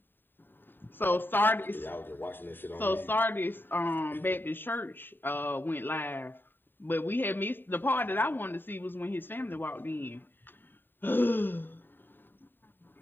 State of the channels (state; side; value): late; right; 0.095 ms